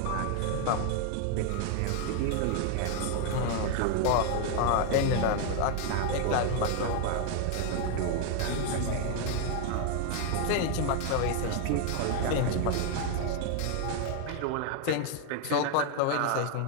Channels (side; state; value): both; different; correlation 0.00